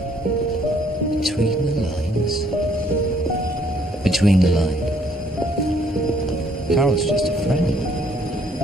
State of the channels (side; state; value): both; normal; correlation 0.65